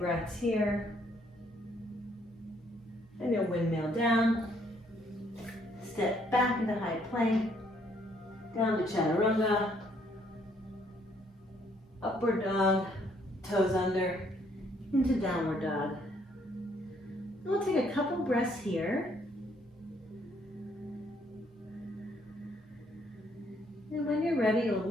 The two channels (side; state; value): both; normal; correlation 0.68